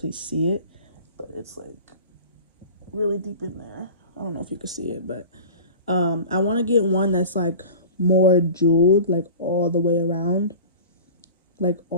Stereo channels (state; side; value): inverted; both; correlation -0.38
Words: see it. But it's like really deep in there. I don't know if you can see it, but I want to get one that's like more jeweled, like all the way around. Like